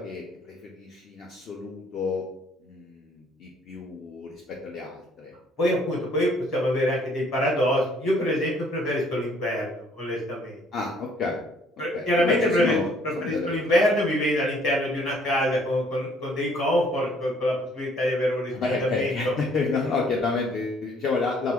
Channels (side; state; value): both; normal; correlation 0.62